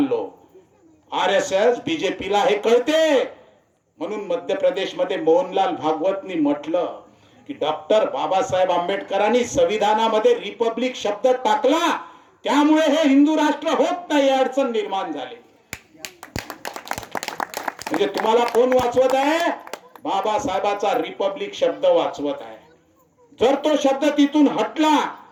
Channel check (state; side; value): identical; both; correlation 1.00